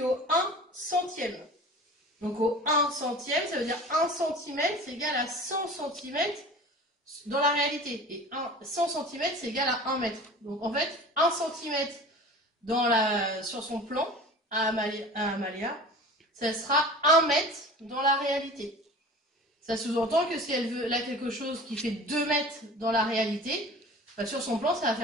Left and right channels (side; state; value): both; normal; correlation 0.40